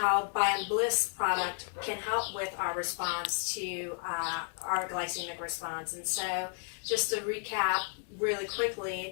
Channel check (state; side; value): silent; right; 56 dB below the other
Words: Biomebliss product can help with our response to our glycemic response. And so just to recap really